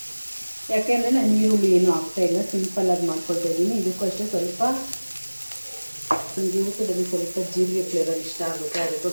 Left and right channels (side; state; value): both; inverted; correlation -1.00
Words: ಯಾಕೆಂದರೆ ನಾನು ಈರುಳ್ಳಿ ಏನು ಹಾಕ್ತಾಯಿಲ್ಲ, ಸಿಂಪಲ್ಲಾಗಿ ಮಾಡ್ಕೊಳ್ತಾ ಇದ್ದೀನಿ. ಇದಕ್ಕೂ ಅಷ್ಟೇ ಸ್ವಲ್ಪ ನನಗೆ ಊಟದಲ್ಲಿ ಸ್ವಲ್ಪ ಜೀರಿಗೆ ಫ್ಲೇವರ್ ಇಷ್ಟ ಆಗುತ್ತೆ,